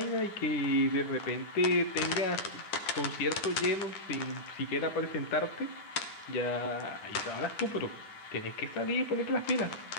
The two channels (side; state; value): right; late; 9.7 ms